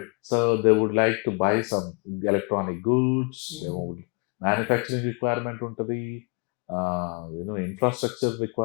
So they would like to buy some electronic goods, manufacturing requirement untadi, infrastructure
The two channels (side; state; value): right; quieter; 33.5 dB